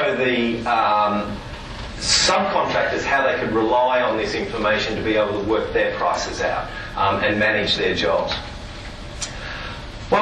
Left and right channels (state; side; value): identical; both; correlation 1.00